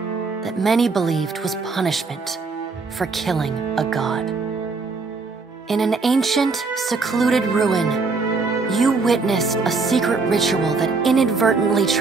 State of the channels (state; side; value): quieter; left; 4.2 dB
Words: that many believed was punishment for killing a god. In an ancient, secluded ruin, you witnessed a secret ritual that inadvertently